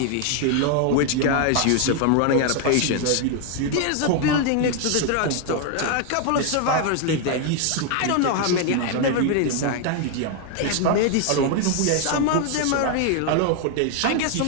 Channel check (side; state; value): both; different; correlation 0.00